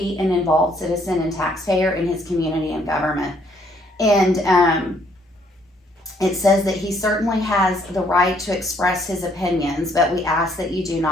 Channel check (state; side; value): normal; both; correlation 0.67